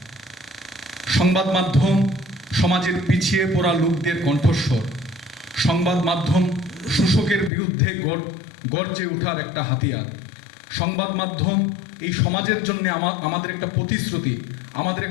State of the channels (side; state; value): right; drops out; at 7.5 s